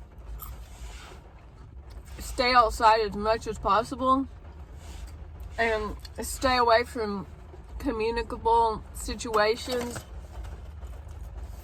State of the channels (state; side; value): identical; both; correlation 1.00